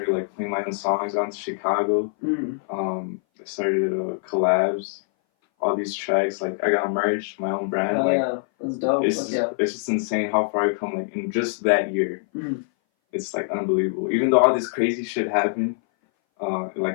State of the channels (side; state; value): right; silent; 59 dB below the other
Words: like, playing my own songs out to Chicago. I started collabs, all these tracks. Like, I got merch, my own brand. Yeah, that's dope. It's just insane how far I've come, like, in just that year. It's, like, unbelievable. Even though all this crazy shit happened,